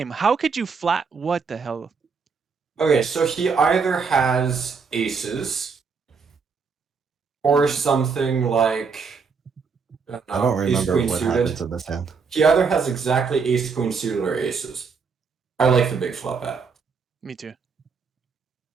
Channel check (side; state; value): left; quieter; 5.4 dB